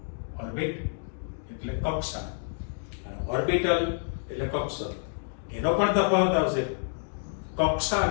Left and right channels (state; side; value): silent; right; digital silence